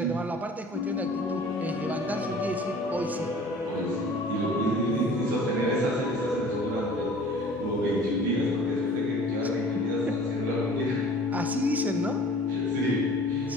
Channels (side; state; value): both; normal; correlation 0.47